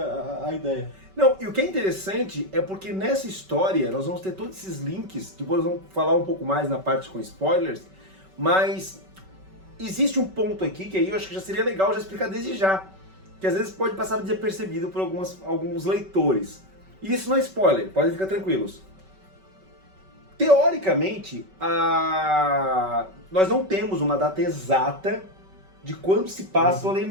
a ideia. Não, e o que é interessante é porque nessa história nós vamos ter todos esses links, depois nós vamos falar um pouco mais na parte com spoilers, mas existe um ponto aqui que aí eu acho que já seria legal já explicar desde já, que às vezes pode passar desapercebido por alguns leitores. E isso não é spoiler, podem ficar tranquilos. Teoricamente, nós não temos uma data de quando se passa o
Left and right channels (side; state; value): left; late; 5.3 ms